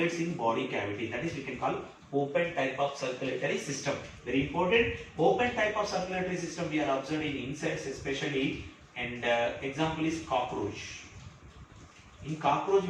in body cavity. That is, we can call open type of circulatory system. Very important. Open type of circulatory system we are observing in insects especially, and example is cockroach. In cockroach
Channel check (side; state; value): both; identical; correlation 1.00